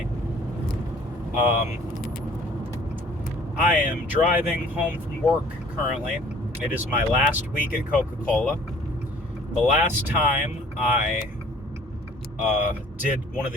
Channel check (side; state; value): both; normal; correlation 0.53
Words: I am driving home from work currently. It is my last week at Coca-Cola. The last time I did one of